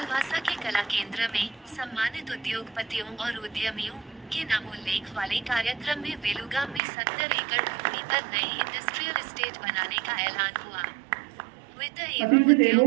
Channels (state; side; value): drops out; left; at 6.8 s